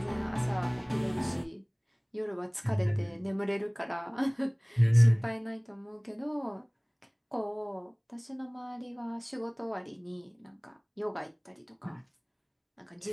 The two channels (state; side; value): identical; both; correlation 1.00